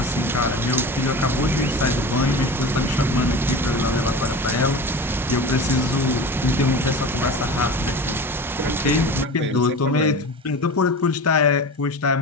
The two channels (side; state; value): both; normal; correlation 0.32